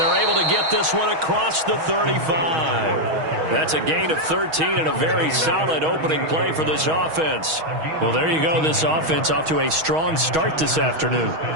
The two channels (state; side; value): late; left; 6.3 ms